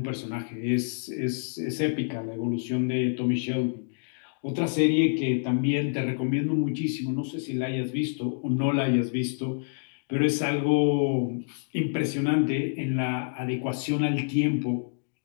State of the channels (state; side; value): silent; right; digital silence